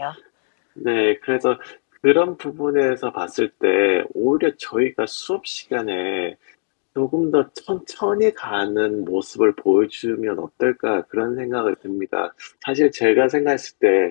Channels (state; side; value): silent; right; digital silence